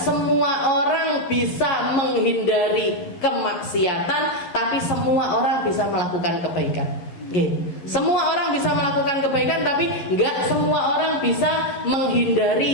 orang bisa menghindari kemaksiatan, tapi semua orang bisa melakukan kebaikan. Okay. Semua orang bisa melakukan kebaikan, tapi nggak semua orang bisa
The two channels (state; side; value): late; right; 11 ms